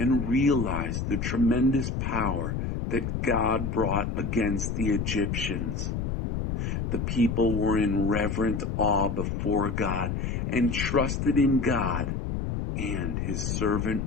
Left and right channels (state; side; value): noise; left; rumble, 2 dB below the sound